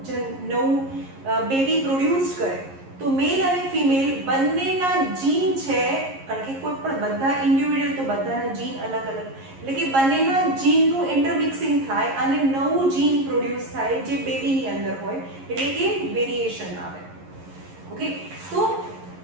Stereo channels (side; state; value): left; late; 11 ms